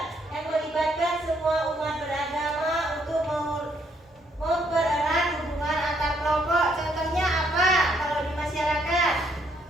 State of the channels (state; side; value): normal; both; correlation 0.70